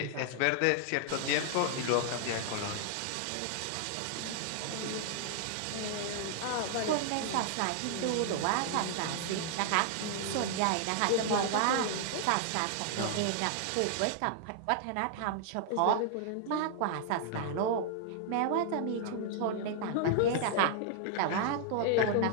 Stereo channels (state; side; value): different; both; correlation -0.01